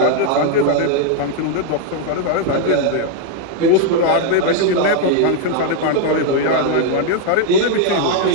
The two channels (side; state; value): both; different; correlation 0.00